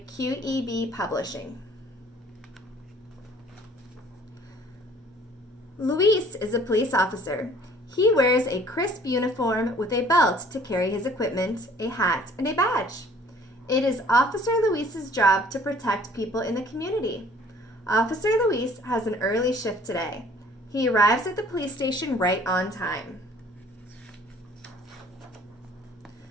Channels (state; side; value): normal; both; correlation 0.54